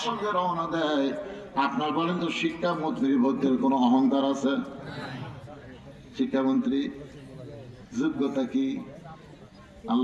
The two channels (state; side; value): identical; both; correlation 1.00